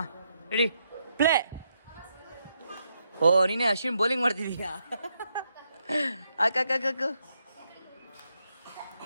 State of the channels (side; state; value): both; inverted; correlation -0.80